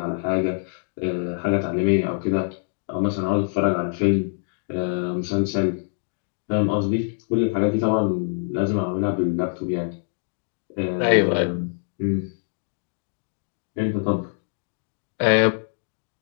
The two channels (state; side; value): silent; right; digital silence